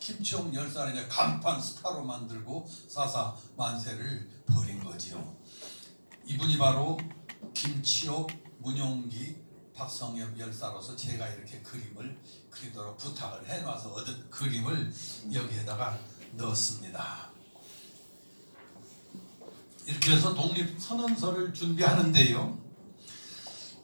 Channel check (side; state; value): both; inverted; correlation -1.00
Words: 열사를 이제 간판 스타로 만들고 사사 만세를 벌인 거지요. 이분이 바로 김치옥, 문용기, 박성엽 열사로서 제가 이렇게 그림을 그리도록 부탁을 해놔서 얻은 그림을 여기에다가 넣었습니다. 이렇게 해서 독립선언서를 준비하는데요.